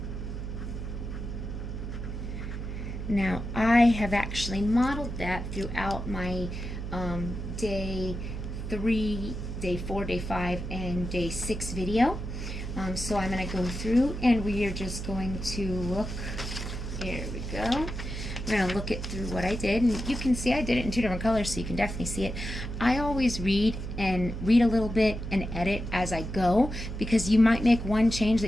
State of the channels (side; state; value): right; noise; hum, 6 dB below the sound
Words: Now I have actually modeled that throughout my day 3, day 4, day 5, and day 6 video. So I'm going to go through and we are just going to look. Here we go. We're going to look it through what I did, and you can see I did it in 2 different colors, so you can definitely see it. I always read a little bit and edit as I go, because you might make one change that